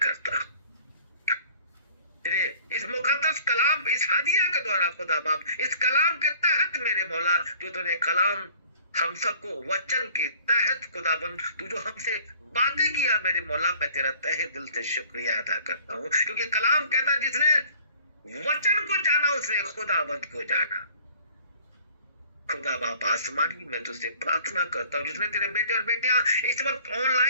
हूं तेरे इस मुकद्दस कलाम, इस हदिया के द्वारा खुदा बाप, इस कलाम के तहत मेरे मौला, जो तूने कलाम हम सबको वचन के तहत खुदाबंद तू जो हमसे बातें किया, मेरे मौला, मैं तेरा तहे दिल से शुक्रिया अदा करता हूँ, क्योंकि कलाम कहता जिसने वचन को जाना उसने खुदाबंद को जाना। खुदा बाप आसमानी, मैं तुझसे प्रार्थना करता हूँ जिसने तेरे बेटे और बेटियां इस वक्त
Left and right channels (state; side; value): inverted; both; correlation -0.51